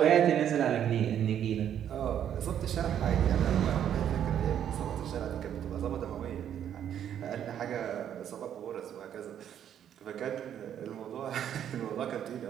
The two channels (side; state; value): left; quieter; 9.7 dB